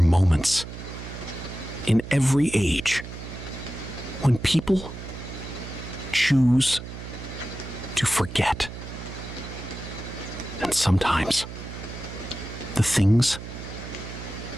moments in every age when people choose to forget. And sometimes the things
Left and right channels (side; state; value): right; noise; hum, 11 dB below the sound